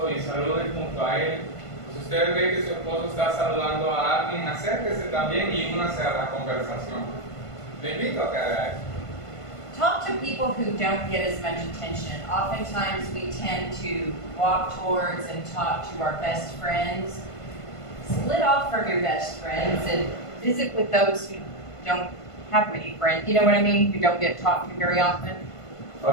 y saluden junto a él. Si usted ve que su esposo está saludando a alguien, acérquese también y únase a la conversación. Le invito a que haga eso. Talk to people who don't get as much attention. Oftentimes we tend to walk towards and talk to our best friends. Split off from your best friends and visit with those who don't have many friends. You know what I mean? Who don't get talked to very often.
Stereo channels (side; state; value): right; late; 1.5 ms